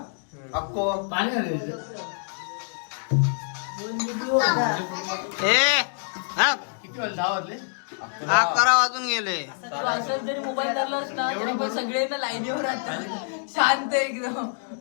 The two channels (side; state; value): right; silent; digital silence